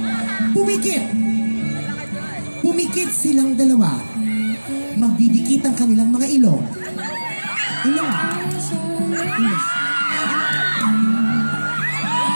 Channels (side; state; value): both; inverted; correlation -1.00